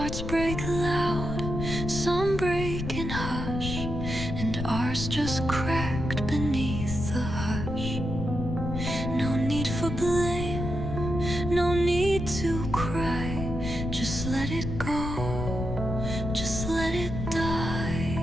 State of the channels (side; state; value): left; noise; rumble, 4 dB below the sound